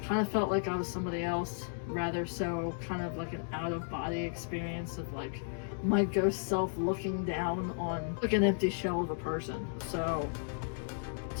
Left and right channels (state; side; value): silent; right; digital silence